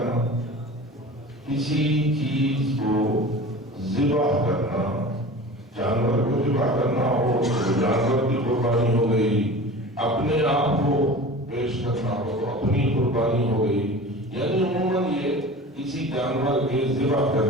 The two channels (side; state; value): both; normal; correlation 0.37